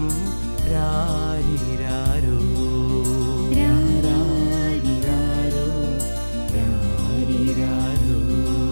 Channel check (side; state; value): both; inverted; correlation -1.00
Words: രാരിരാരോ രാരിരാരോ രാരിരാരോ.